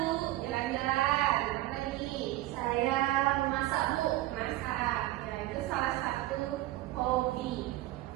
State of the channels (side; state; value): left; quieter; 16.5 dB